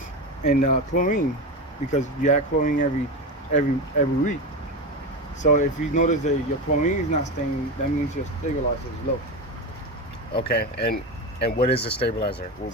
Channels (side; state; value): both; normal; correlation 0.20